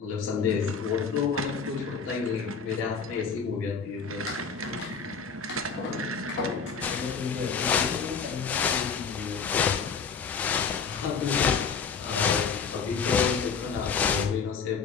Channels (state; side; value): quieter; right; 5.9 dB